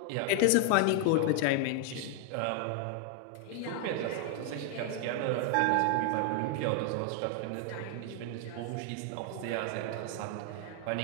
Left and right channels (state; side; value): different; both; correlation 0.00